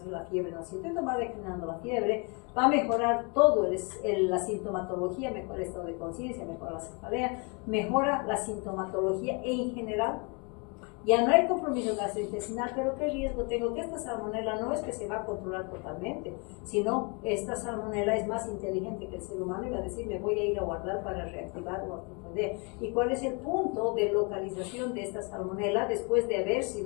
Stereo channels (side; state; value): right; quieter; 32.8 dB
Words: la fiebre, ¿no es cierto? Entonces va declinando la fiebre, va a mejorar todo la sintomatología, mejora el estado de conciencia, mejora la cefalea, mejora la sintomatología en general. Ya no hay compromiso gastrointestinal, pero ¿qué riesgo tengo? Que esta salmonela no es que se va a controlar totalmente, sino esta salmonela es más inteligente que el ser humano y va a decir, me voy a ir a guardar para reactivar la tifoidea. ¿Y cuál es el punto de localización de esta salmonela después de haber